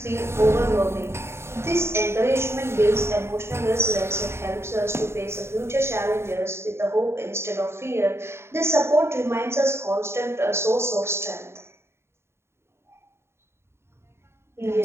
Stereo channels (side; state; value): left; late; 0.12 ms